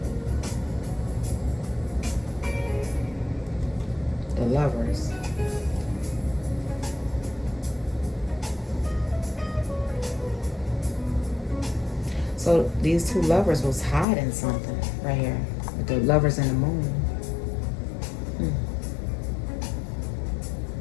The lovers. So these two lovers was hiding something right here. With the lovers in the moon.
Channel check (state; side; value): drops out; right; at 14.1 s